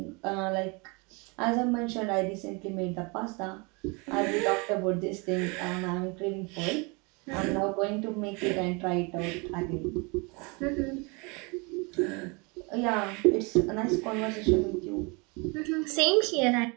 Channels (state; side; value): quieter; left; 29.7 dB